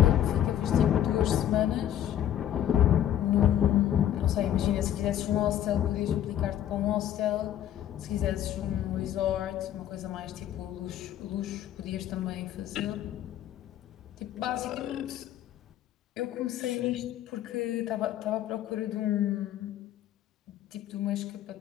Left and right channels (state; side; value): quieter; right; 11.2 dB